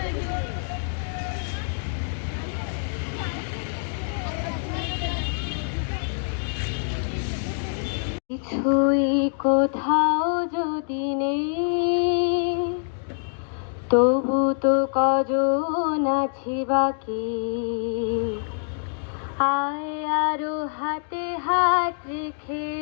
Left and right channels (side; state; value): right; silent; digital silence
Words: কিছুই কোথাও যদি নেই, তবু তো কজন আছি বাকি। আয় আরো হাতে হাত রেখে,